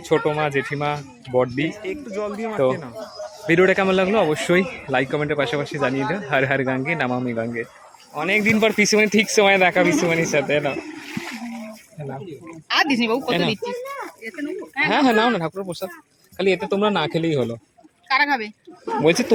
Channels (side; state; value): both; identical; correlation 1.00